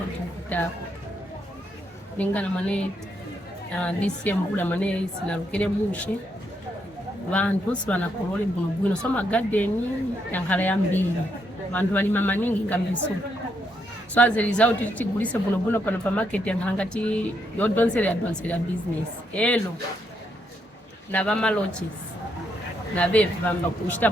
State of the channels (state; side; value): normal; both; correlation 0.78